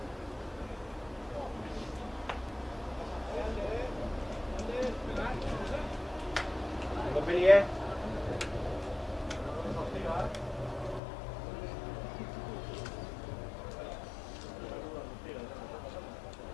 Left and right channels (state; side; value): drops out; right; at 11.0 s